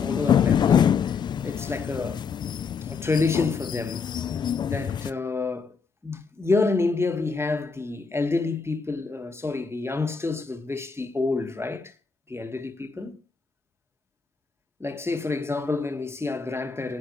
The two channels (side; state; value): right; quieter; 5.2 dB